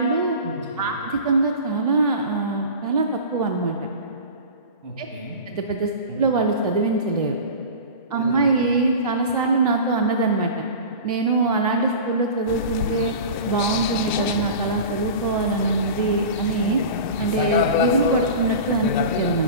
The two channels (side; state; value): both; inverted; correlation -0.33